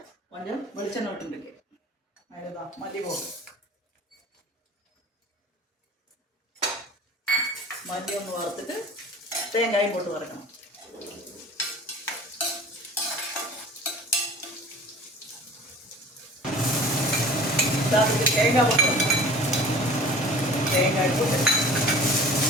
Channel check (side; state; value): both; normal; correlation 0.43